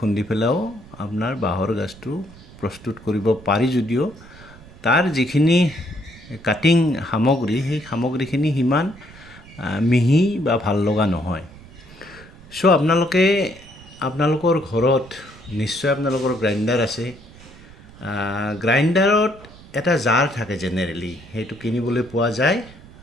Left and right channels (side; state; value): right; noise; rumble, 21 dB below the sound